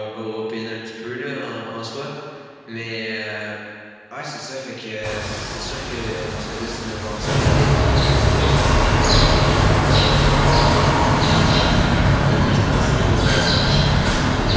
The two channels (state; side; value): identical; both; correlation 1.00